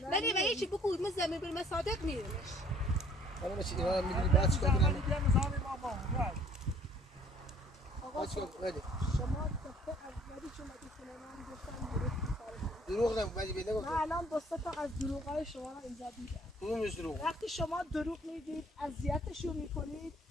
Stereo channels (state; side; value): normal; both; correlation 0.58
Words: ولی و هیچ بگو من زمین برم صادق میرمش. حالا چی اینا میگی بعد چیکار کنم؟ آقا چیکار کنم؟ شما دفعه اولی که اومدی خونه من گفتم دروغ نگو ولی بده گفتم. من الان دو سه تا از دروغای شما رو اینجا دیدم. کدوم دروغ؟ وقتی شما دروغ میگید اذیتشون میکنید